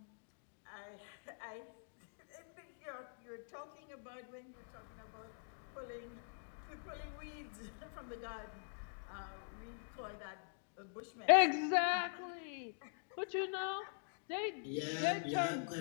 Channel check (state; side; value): silent; right; digital silence